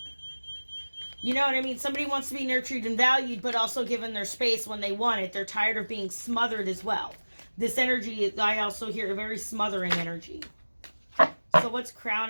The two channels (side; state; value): both; inverted; correlation -1.00